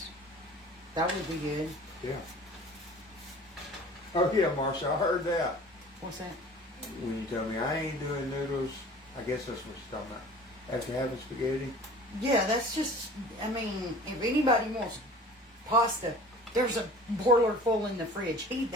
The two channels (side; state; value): both; normal; correlation 0.44